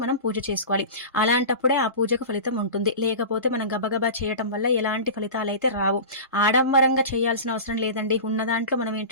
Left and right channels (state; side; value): inverted; both; correlation -0.31